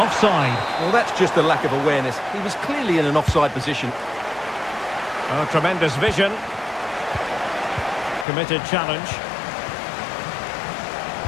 Well, that's just a lack of awareness. He was clearly in an offside position. Oh, tremendous vision. Committed challenge.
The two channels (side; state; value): right; drops out; at 8.2 s